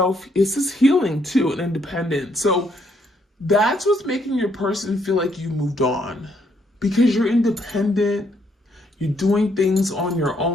healing too, and independent. So that's what's making your person feel like you moved on, because you're independent. You're doing things on your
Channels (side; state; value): both; normal; correlation 0.72